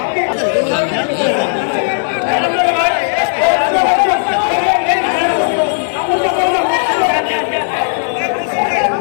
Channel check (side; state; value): right; silent; digital silence